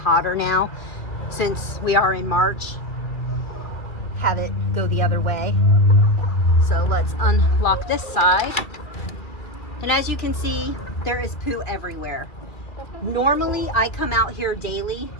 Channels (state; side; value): late; right; 2.2 ms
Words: now since we are in March. Have it go the other way. So let's unlock this side. And as you can see, there is poo everywhere. Normally I come out here daily